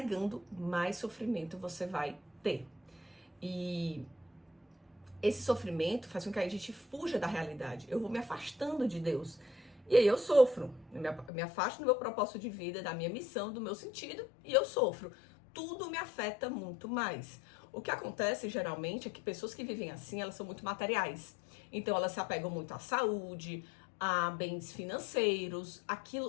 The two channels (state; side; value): drops out; right; at 11.3 s